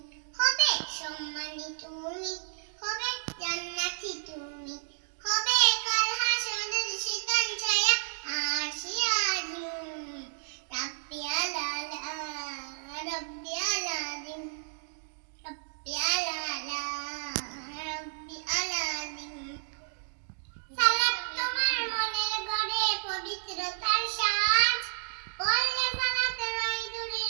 হবে সম্মানী তুমি, হবে জান্নাতি তুমি, হবে কাল হাসরের শীতল ছায়া আরশে আজিম, রাব্বি আলা আলা রাব্বি আলাজিম, রাব্বি আলা আলা রাব্বি আলাজিম। সালাত তোমার মনের ঘরে পবিত্রতার সাজ, পড়লে সালাত রয় দূরে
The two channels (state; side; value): silent; left; digital silence